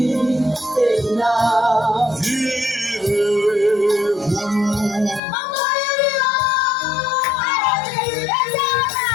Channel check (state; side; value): drops out; right; at 5.2 s